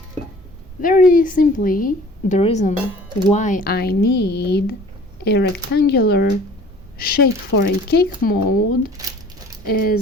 Very simply, the reason why I need a rectangular shape for a cake mold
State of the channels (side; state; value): both; normal; correlation 0.48